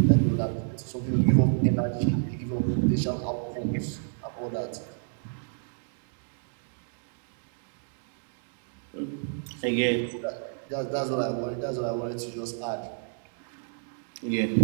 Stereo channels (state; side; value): silent; left; digital silence